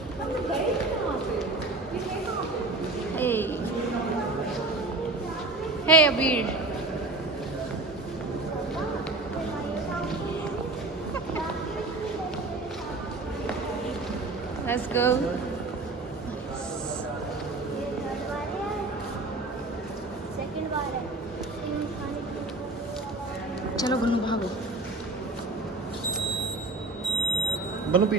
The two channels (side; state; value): left; quieter; 3.0 dB